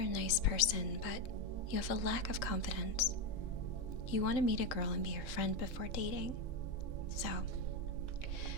a nice person, but you have a lack of confidence. You want to meet a girl and be her friend before dating. So,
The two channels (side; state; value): right; late; 3.6 ms